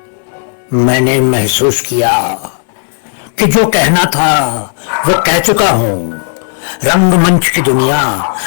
मैंने महसूस किया कि जो कहना था वो कह चुका हूं। रंगमंच की दुनिया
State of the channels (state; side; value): silent; right; digital silence